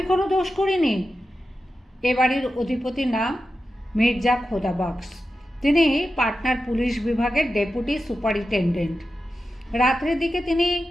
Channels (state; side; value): normal; both; correlation 0.92